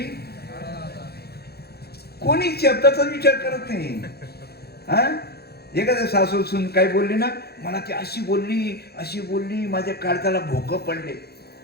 कोणी शब्दाचा विचार करत नाही. एखाद्या सासू सुन काय बोलली ना, मला ती अशी बोलली माझ्या काळजाला भोकं पडले.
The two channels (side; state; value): right; late; 0.46 ms